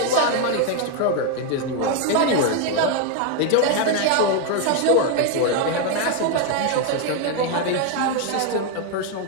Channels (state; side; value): different; both; correlation 0.01